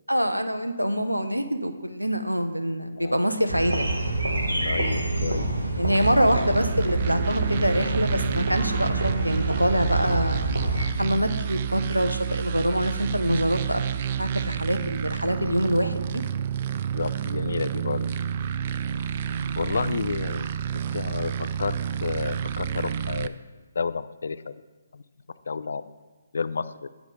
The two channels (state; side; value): inverted; both; correlation -0.82